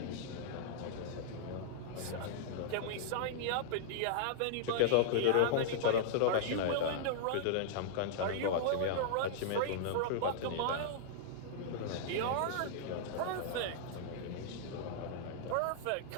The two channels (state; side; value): different; both; correlation -0.01